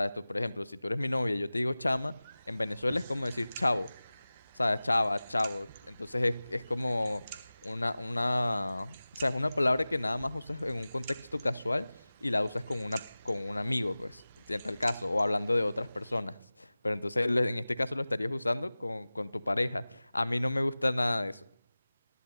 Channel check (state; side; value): inverted; both; correlation -0.98